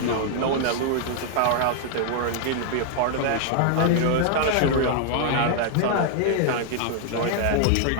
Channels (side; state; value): both; different; correlation 0.00